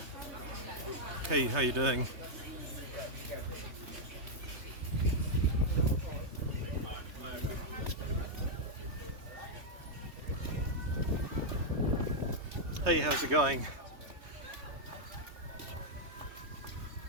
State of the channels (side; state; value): left; late; 3.2 ms